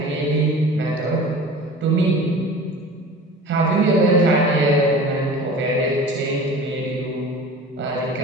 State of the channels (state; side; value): normal; both; correlation 0.39